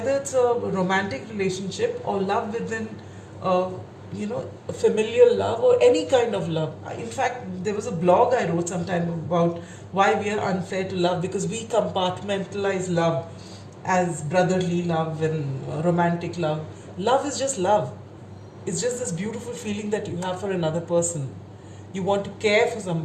it's a romantic relationship or love within a familial love or any kind of love. In fact, there was a blog I wrote sometime about why we are unfair to love, because we compartmentalize love as brotherly love and romantic love. Love is just love. It's just this beautiful feeling that you have for another person. You want to care for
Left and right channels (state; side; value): identical; both; correlation 1.00